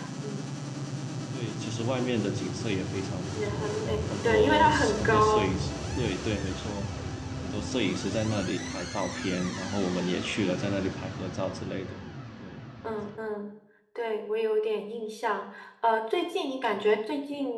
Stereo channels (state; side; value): identical; both; correlation 1.00